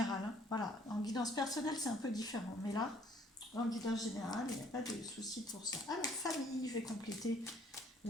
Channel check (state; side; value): normal; both; correlation 0.60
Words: hein, voilà, en guidance personnelle, c'est un peu différent. Mais là, en guidance générale, il n'y a pas de souci pour ça. Alors, famille, je vais compléter